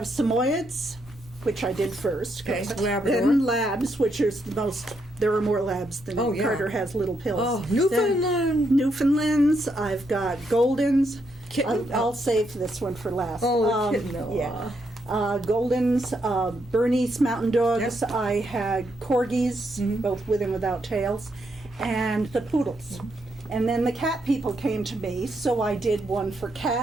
Samoyeds, which I did first. Okay, Labrador. Then Labs, which is the most, there are more Labs than Oh, yeah. Carter has little pills. Oh, Then Newfoundland. Newfoundlands, I've got Goldens. Kitten. I'll save this one for last. Oh, kitten. Oh, Yeah. Goldens, Bernese Mountain Dogs. Yep. I had Corgis, both with and without tails, and the Poodles. And then the cat people came to me, so I did one for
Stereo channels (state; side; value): normal; both; correlation 0.78